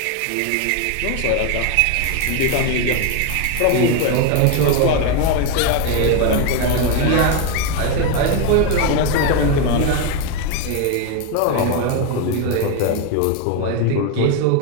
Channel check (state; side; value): different; both; correlation 0.02